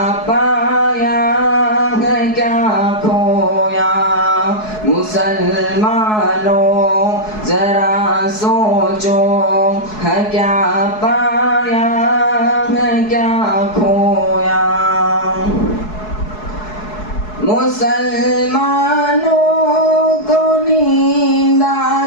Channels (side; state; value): right; late; 4.7 ms